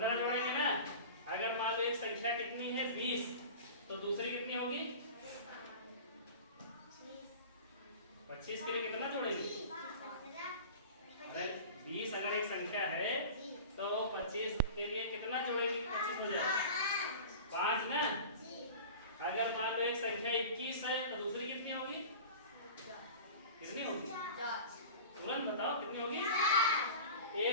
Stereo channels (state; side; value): inverted; both; correlation -0.36